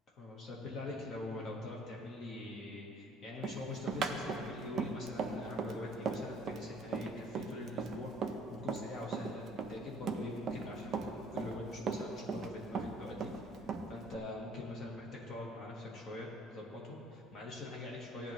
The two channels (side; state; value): both; normal; correlation 0.57